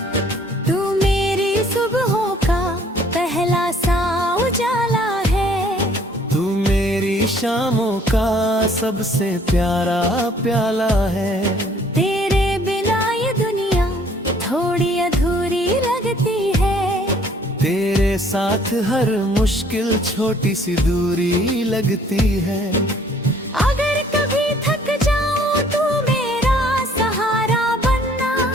तू मेरी सुबहों का पहला सा उजाला है, तू मेरी शामों का सबसे प्यारा प्याला है। तेरे बिना ये दुनिया थोड़ी अधूरी लगती है, तेरे साथ हर मुश्किल छोटी सी दूरी लगती है। अगर कभी थक जाऊं तू मेरा सहारा बनना,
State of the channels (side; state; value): both; normal; correlation 0.59